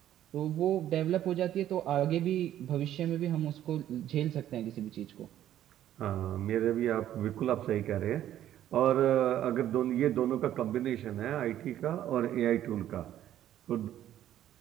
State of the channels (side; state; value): left; quieter; 11.9 dB